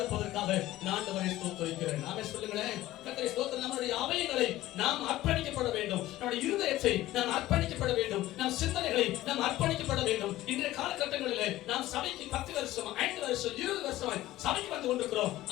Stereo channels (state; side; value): quieter; right; 15.8 dB